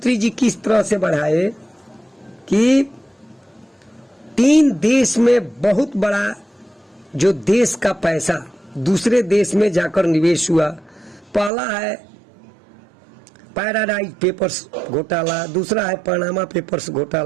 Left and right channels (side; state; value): left; drops out; at 11.5 s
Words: जी किस तरह से बढ़ाए कि 3 देश में बहुत बड़ा जो देश का पैसा दूसरे देश में जाकर निवेश हुआ। पहला है पैराडाइज पेपर्स घोटाला, दूसरा है पनामा पेपर्स